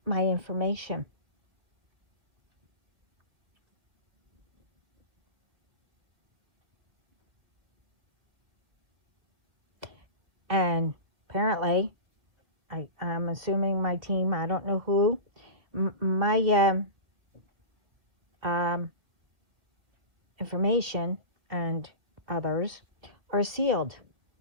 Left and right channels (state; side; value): late; left; 2.2 ms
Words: my information. And apparently, I'm assuming my team, I don't know who, my information and others are sealed.